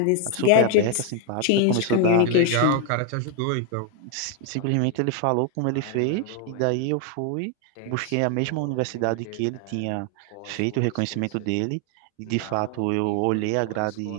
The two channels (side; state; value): both; different; correlation 0.00